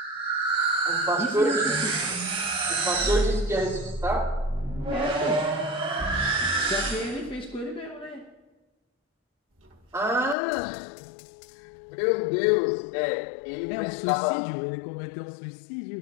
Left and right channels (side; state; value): right; drops out; at 10.4 s